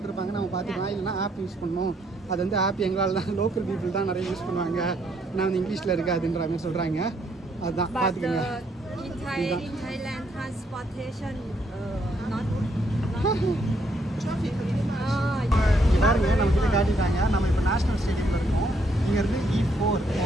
நம்ம பார்த்துக்கலாம். இல்லைனா ஆப் யூஸ் பண்ணணும். அது வந்து ஆப் எங்களால் தான், லோக்கல் பீப்புள் தான் நிறைய யூஸ் பண்ணுவாங்க. நான் வந்து இங்கிலீஷில் இருக்காதுன்ற மாதிரி சொல்கிறாங்க. அதுதான் பார்த்துக்கோங்க. In Thailand, transportation not இங்கே பாருங்க, நம்ம கிட்ட காட்டிட்டாங்க. நம்ம இப்போ நேஷனல் ஸ்டேடியமில் இருக்கோம். இங்கேருந்து E4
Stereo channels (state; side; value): normal; both; correlation 0.72